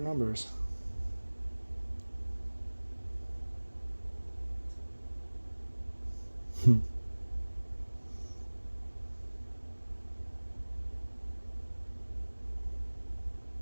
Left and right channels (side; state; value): both; inverted; correlation -1.00